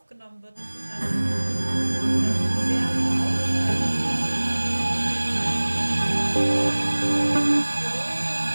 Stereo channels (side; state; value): both; inverted; correlation -1.00